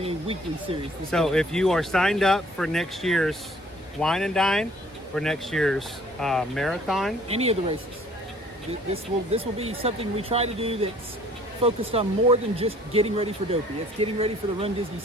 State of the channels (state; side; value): normal; both; correlation 0.56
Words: a weekly series. So if you are signed up for next year's Wine and Dine, for next year's marathon, any of the races, this will be something we try to do that's focused on more than just getting ready for Dopey. It's getting ready for the Run Disney